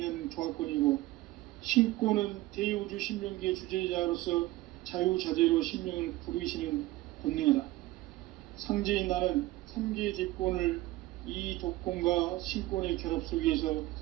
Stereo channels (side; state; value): left; quieter; 17.9 dB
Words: 조화권이고, 신권은 대우주 신명기의 주제자로서 자유자재로 신명을 부르시는 권능이다. 상제인 나는 3개의 대권을 이 도권과 신권의 결합 속에서